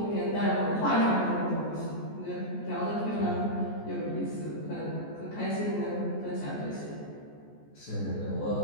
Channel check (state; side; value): late; right; 14 ms